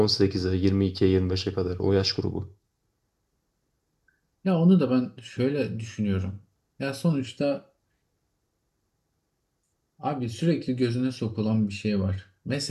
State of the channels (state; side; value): identical; both; correlation 1.00